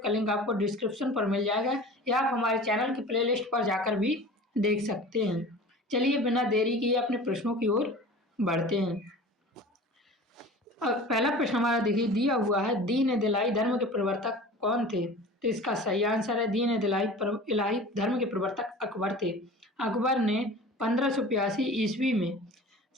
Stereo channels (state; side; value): normal; both; correlation 0.39